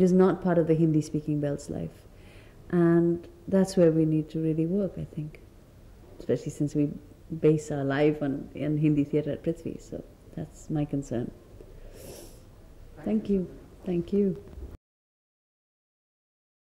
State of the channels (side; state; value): both; identical; correlation 1.00